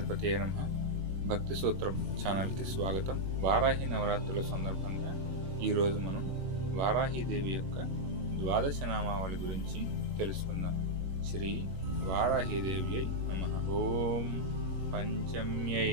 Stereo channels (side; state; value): left; late; 21 ms